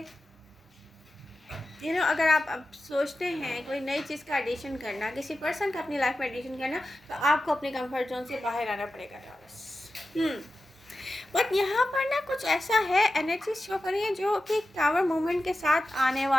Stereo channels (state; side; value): normal; both; correlation 0.93